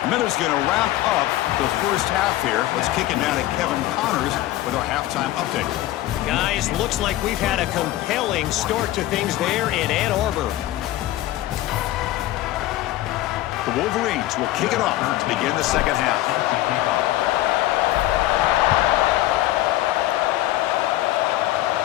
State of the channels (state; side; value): quieter; right; 15.4 dB